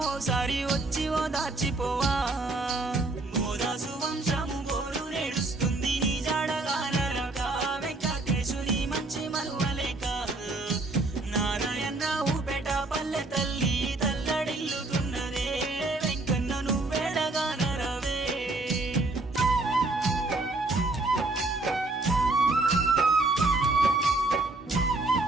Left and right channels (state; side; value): quieter; left; 3.1 dB